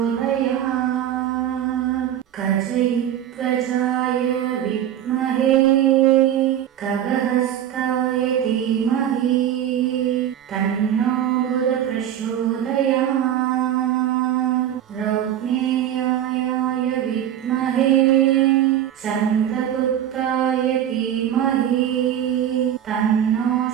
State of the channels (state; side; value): quieter; left; 10.7 dB